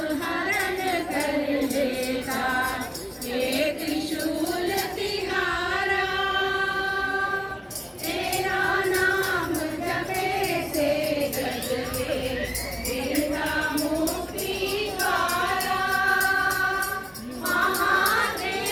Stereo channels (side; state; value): both; identical; correlation 1.00